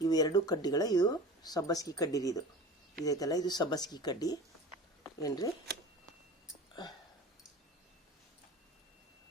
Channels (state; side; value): normal; both; correlation 0.36